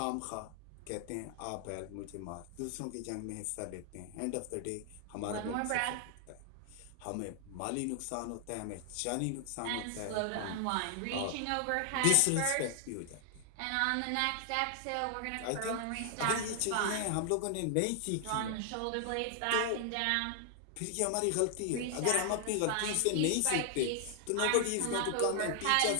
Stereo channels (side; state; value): both; different; correlation 0.00